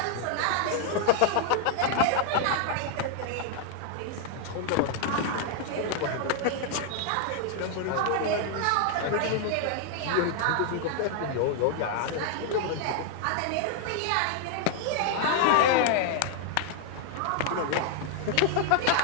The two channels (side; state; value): both; different; correlation 0.00